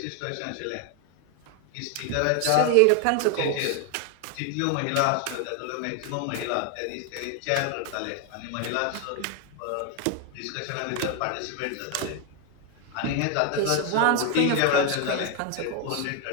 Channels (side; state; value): both; different; correlation 0.00